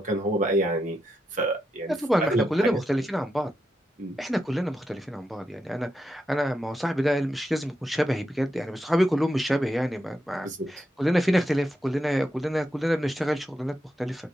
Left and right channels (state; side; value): normal; both; correlation 0.85